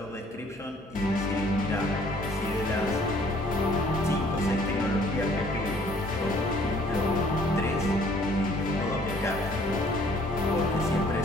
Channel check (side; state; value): both; normal; correlation 0.59